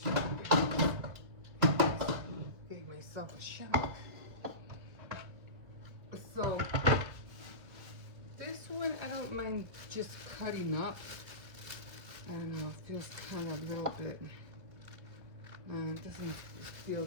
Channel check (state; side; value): late; left; 2.7 ms